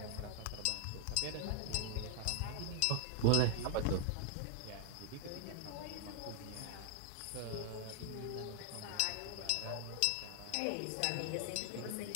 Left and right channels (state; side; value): different; both; correlation 0.00